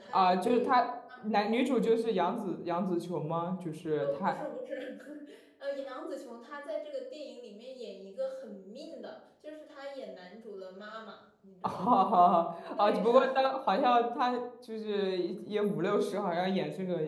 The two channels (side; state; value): both; identical; correlation 1.00